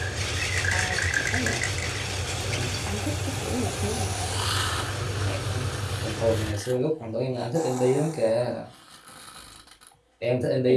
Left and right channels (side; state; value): both; identical; correlation 1.00